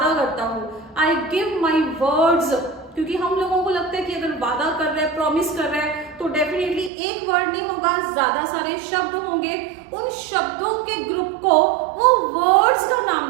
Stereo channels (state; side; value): drops out; left; at 6.9 s